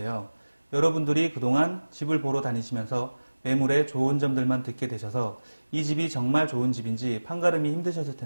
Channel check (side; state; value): both; inverted; correlation -1.00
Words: 여러분들이 그동안 집을 보러 다니시면서 매물의 좋은 점들만 듣게 되셔서 이 집이 정말 좋은 집인지 판가름이 힘드셨을